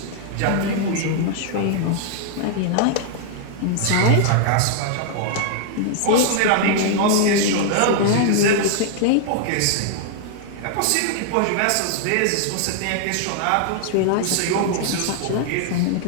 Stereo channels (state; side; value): different; both; correlation -0.01